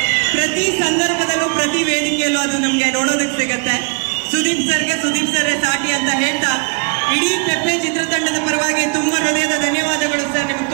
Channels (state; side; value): quieter; left; 35.1 dB